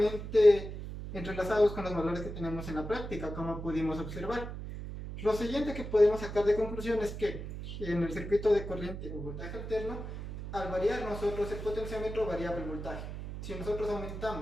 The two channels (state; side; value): noise; right; hum, 8 dB below the sound